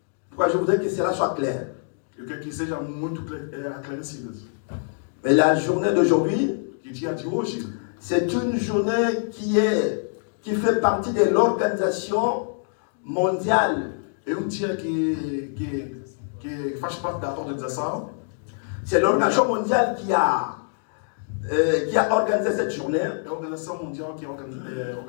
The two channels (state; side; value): silent; right; digital silence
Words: Pourquoi je voudrais que cela soit clair. Eu quero que seja muito esclarecido. Mais la journée d'aujourd'hui, Que dia de hoje c'est une journée qui fait partie de l'organisation mondiale. é dia que faz parte da organização. C'est l'organisation mondiale qui a organisé cette journée É a organização mundial que